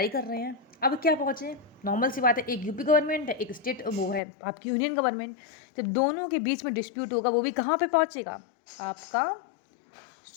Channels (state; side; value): drops out; right; at 4.2 s